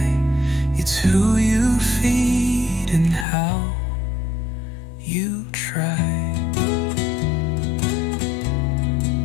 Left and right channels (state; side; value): drops out; right; at 3.2 s